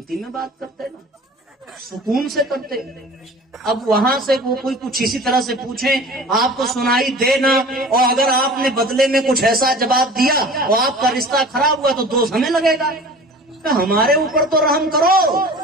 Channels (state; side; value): normal; both; correlation 0.41